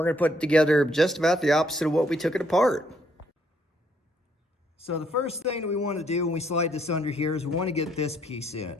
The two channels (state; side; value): normal; both; correlation 0.70